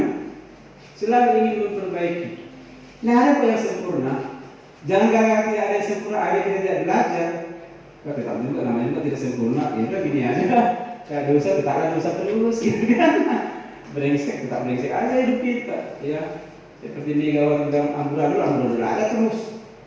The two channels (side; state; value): both; identical; correlation 1.00